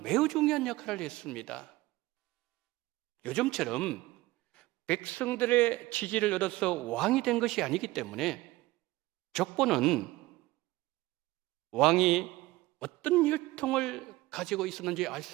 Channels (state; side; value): quieter; left; 19.1 dB